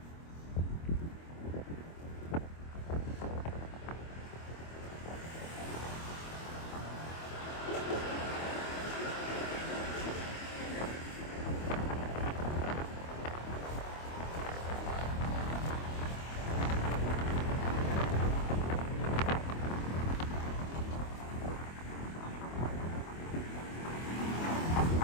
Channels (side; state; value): right; late; 25 ms